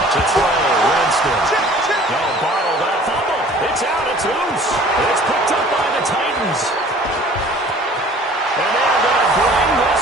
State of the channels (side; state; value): both; normal; correlation 0.49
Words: To throw, Winston. No, bottled up, fumble. It's out, it's loose. It's picked up by the Titans. And they're going to bring this